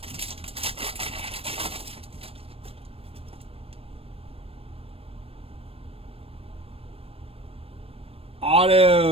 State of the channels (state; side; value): late; left; 0.28 ms